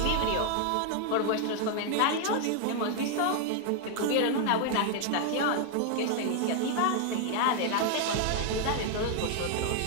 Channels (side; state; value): both; different; correlation 0.00